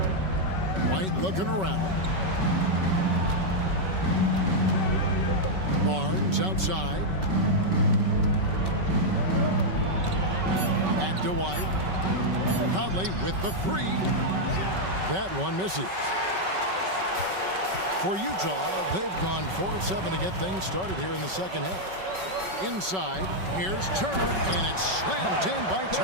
White looking around. Barnes outside. Back to White. Conley with the 3. That one misses. For Utah, they've gone 4 of 7 to get things started here in the second half. Inside, here's Turner, and it's slammed in by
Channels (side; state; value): left; late; 5.3 ms